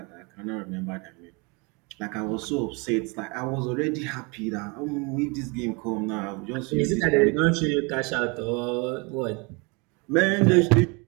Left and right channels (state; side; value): quieter; left; 29.7 dB